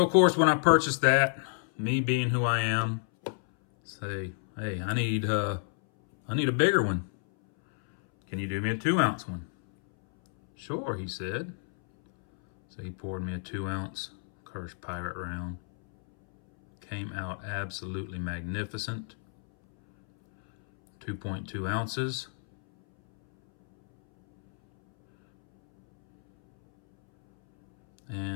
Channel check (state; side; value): silent; right; 58 dB below the other